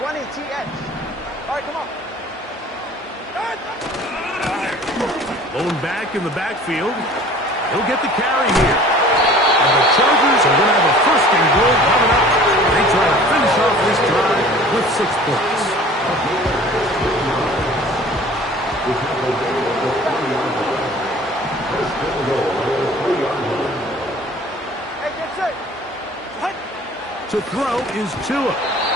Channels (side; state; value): both; normal; correlation 0.47